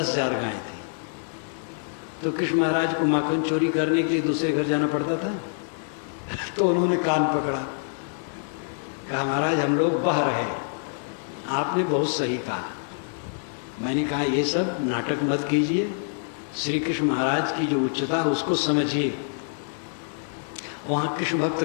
गाय थी, तो कृष्ण महाराज को माखन चोरी करने के लिए दूसरे घर जाना पड़ता था। तो उन्होंने कान पकड़ा, कहा महाराज हम लोग बह रहे, आपने बहुत सही कहा। मैंने कहा ये सब नाटक मत कीजिए, श्री कृष्ण महाराज की जो उच्चता उसको समझिए। वहाँ कृष्ण भक्त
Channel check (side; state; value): right; silent; digital silence